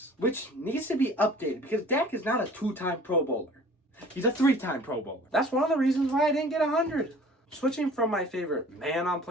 which needs to be updated because Dak is not a 2-time Pro Bowler. He's a 3-time Pro Bowler. That's one of the reasons why I didn't get 100. Switching from my favorite man on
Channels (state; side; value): normal; both; correlation 0.48